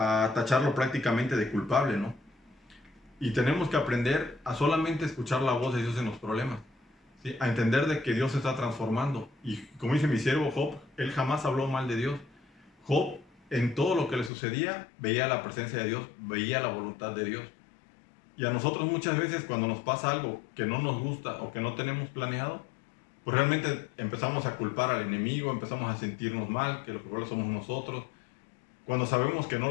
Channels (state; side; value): drops out; right; at 14.3 s